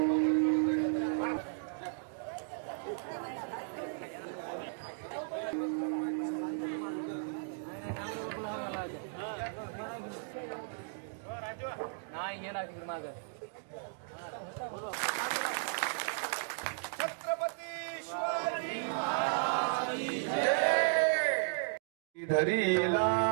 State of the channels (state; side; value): silent; left; digital silence